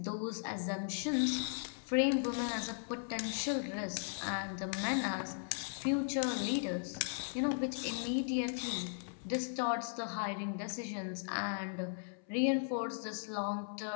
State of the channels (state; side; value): silent; right; 53 dB below the other